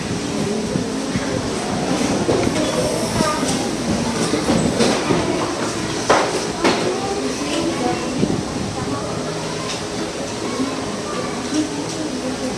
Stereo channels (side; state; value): both; identical; correlation 1.00